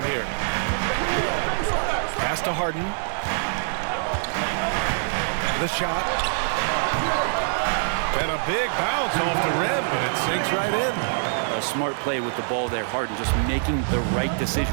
here. Pass to Harden. The shot. And a big bounce off the rim, but it sinks right in. A smart play with the ball there, Harden, just making the right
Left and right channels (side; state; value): left; silent; digital silence